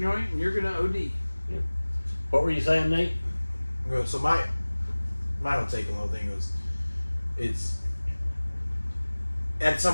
and you're gonna OD. What were you saying, Nate? Well, so my whole take on the whole thing was, it's at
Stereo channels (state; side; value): inverted; both; correlation -1.00